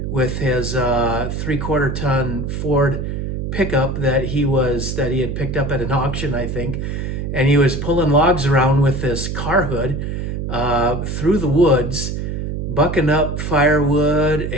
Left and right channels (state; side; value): noise; right; hum, 3 dB below the sound